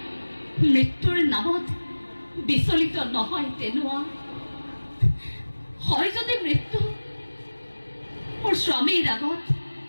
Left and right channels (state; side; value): inverted; both; correlation -1.00